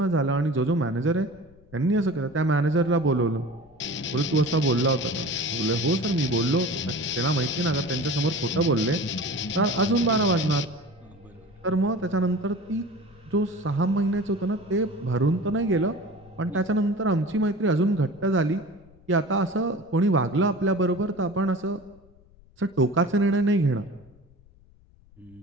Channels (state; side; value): noise; left; rumble, 27 dB below the sound